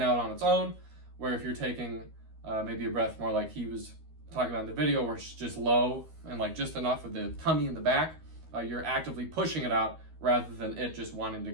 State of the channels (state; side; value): late; left; 13 ms